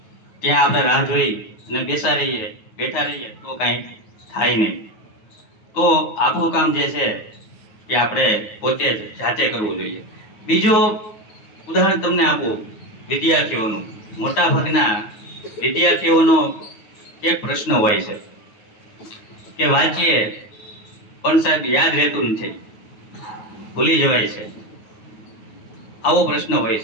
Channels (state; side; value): late; right; 9.3 ms